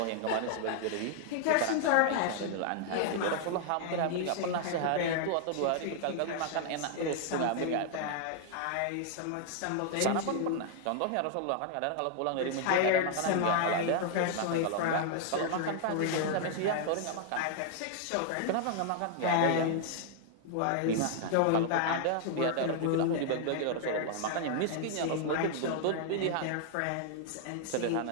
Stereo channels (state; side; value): different; both; correlation 0.00